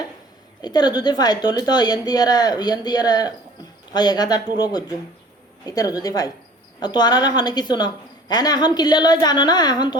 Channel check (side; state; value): both; normal; correlation 0.48